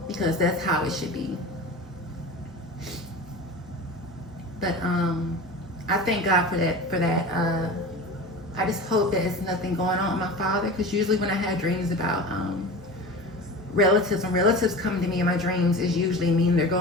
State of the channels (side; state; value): both; normal; correlation 0.32